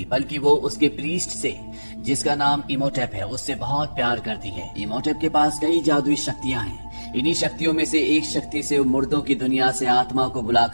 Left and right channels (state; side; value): inverted; both; correlation -1.00